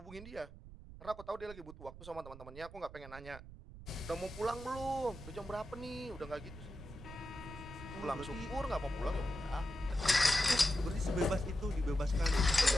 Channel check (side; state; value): right; noise; rumble, 15 dB below the sound